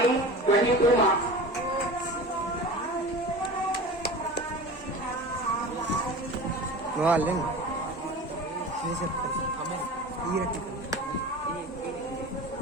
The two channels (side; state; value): both; normal; correlation 0.35